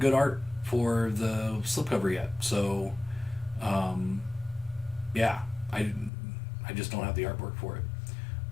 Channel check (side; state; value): right; drops out; at 6.1 s